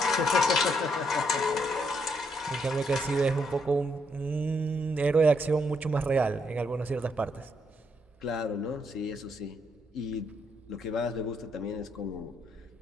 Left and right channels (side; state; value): both; normal; correlation 0.75